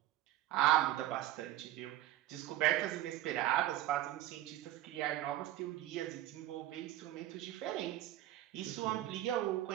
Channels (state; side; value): quieter; left; 14.1 dB